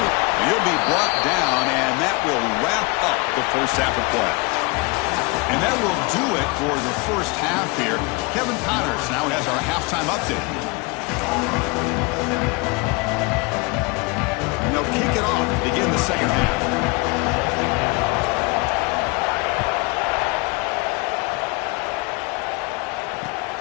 He'll be brought down, and that will wrap up the first half of play. And that will do it for the first half here. Kevin Connors now has our halftime update. And they'll kick it off to begin the second half.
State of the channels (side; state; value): right; quieter; 28.1 dB